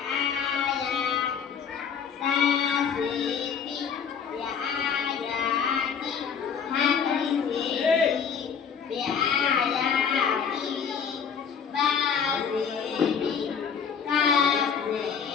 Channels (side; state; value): right; quieter; 6.9 dB